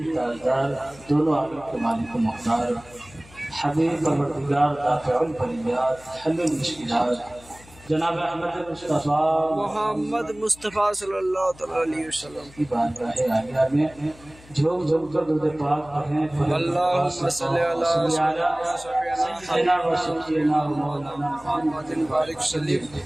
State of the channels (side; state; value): left; noise; hum, 23 dB below the sound